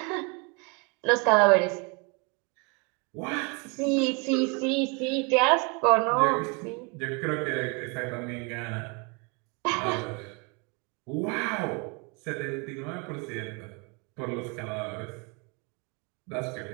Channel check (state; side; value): quieter; left; 32.3 dB